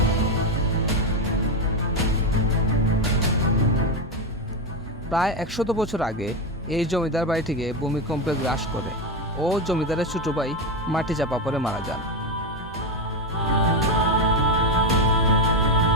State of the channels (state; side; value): normal; both; correlation 0.11